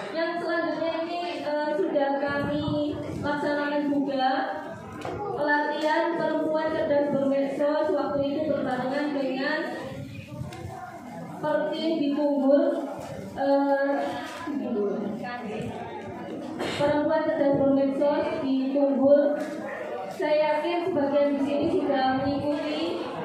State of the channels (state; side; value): identical; both; correlation 1.00